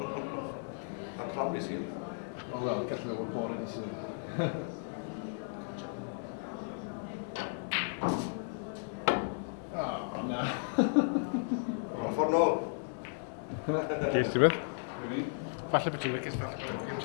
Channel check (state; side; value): silent; right; digital silence